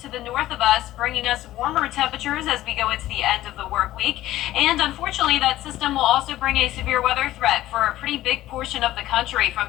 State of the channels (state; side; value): quieter; right; 14.9 dB